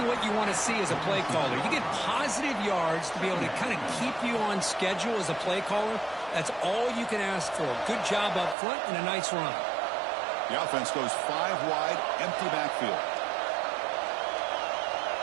what you want to see as a play caller. You get positive yards to be able to kind of keep you on schedule as a play caller. That's all you can ask for. Good job up front and a nice run. The offense goes 5 wide, empty backfield.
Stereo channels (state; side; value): drops out; left; at 8.6 s